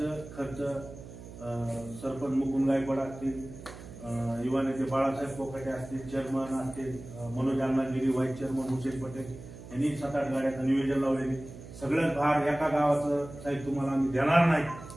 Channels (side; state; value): right; noise; hum, 15 dB below the sound